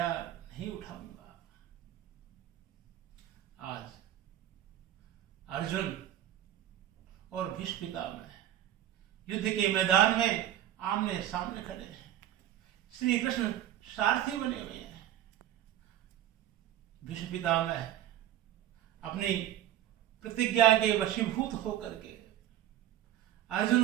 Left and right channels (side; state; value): left; quieter; 12.5 dB